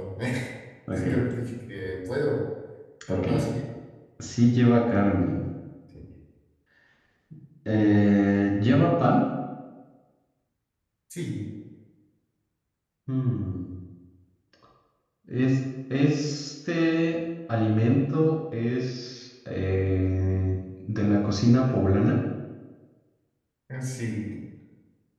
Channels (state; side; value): identical; both; correlation 1.00